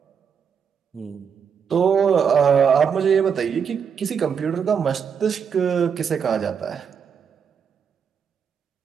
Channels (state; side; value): quieter; left; 7.0 dB